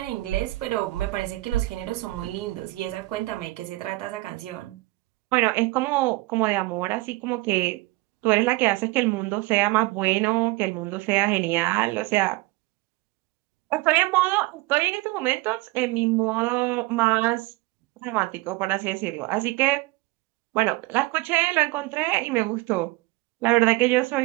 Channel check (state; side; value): quieter; left; 21.2 dB